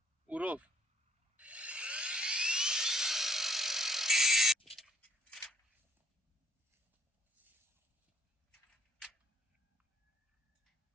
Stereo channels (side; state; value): both; normal; correlation 0.64